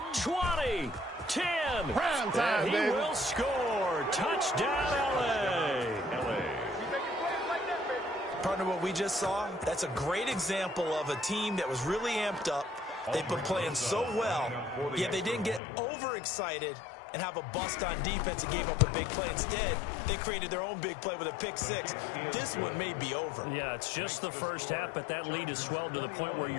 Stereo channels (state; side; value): drops out; right; at 15.6 s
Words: 20, 10. Prime time, and he baby. will score. Touchdown, L.A. Partner, what we just saw, that's a great example of a team that was really amped up. They've been playing so well, yet they didn't get overexcited and have a bust on defense and gave up a big play. Instead, they created their own big play with a pick six. This one may be over. Yeah, it's just the first half, but that lead has swelled to the point where